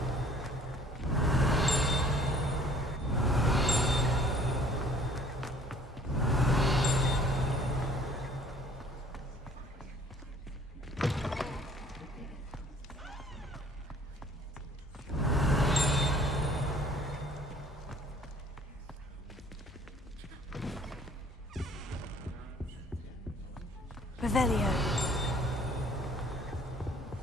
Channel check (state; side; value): normal; both; correlation 0.55